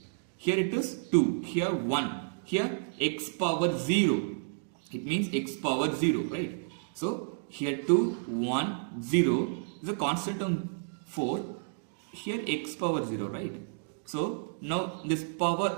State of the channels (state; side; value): silent; left; digital silence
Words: Here it is 2, here 1, here x power 0. It means x power 0, right? So here 2, 1, 0 is a constant term 4. Here x power 0, right? So now this power,